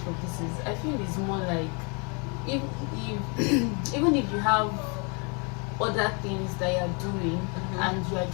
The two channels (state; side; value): quieter; right; 34.1 dB